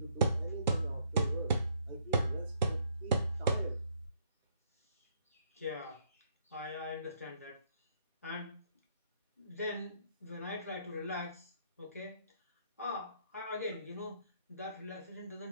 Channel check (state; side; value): inverted; both; correlation -0.69